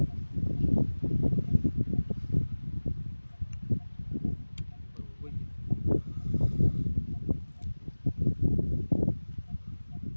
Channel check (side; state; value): both; inverted; correlation -1.00